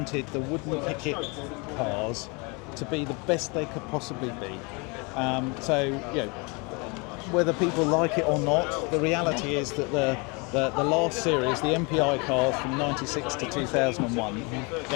the Wood Pickett cars to be the best they could possibly be. So whether people like it or not, the reality is that the last series, the MPI cars from 96 to 2001,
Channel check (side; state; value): right; quieter; 29.8 dB